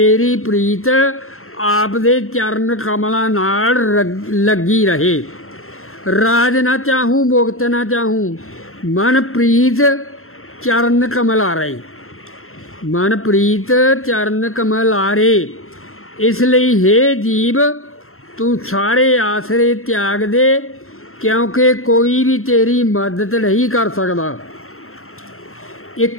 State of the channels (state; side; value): late; right; 0.62 ms